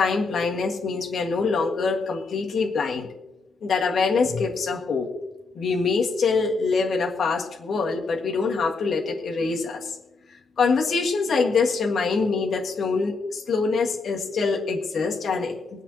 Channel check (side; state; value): right; quieter; 4.1 dB